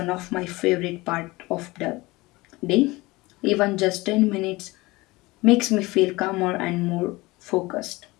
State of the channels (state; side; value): quieter; right; 21.5 dB